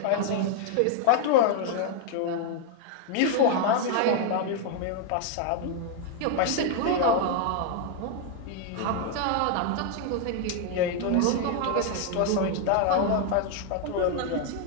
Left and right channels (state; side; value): different; both; correlation 0.00